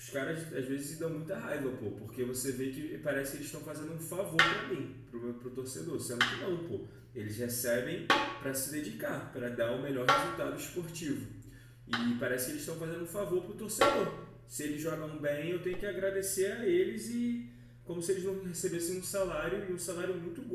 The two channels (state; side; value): identical; both; correlation 1.00